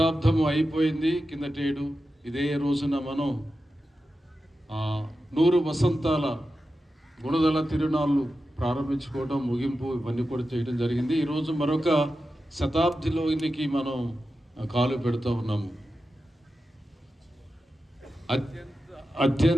అయిపోయింది కిందటేడు. ఇదే రోజున మనం 100 వసంతాల గుణదల తిరునాళ్ళు ప్రారంభించుకోవడం, ముగింపు ఇవన్నీ కూడా చేయడం జరిగింది. ఈరోజు మరొక శతాబ్దిలోనికి మనం కాలు పెడుతూ ఉన్నాము.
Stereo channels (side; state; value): both; normal; correlation 0.91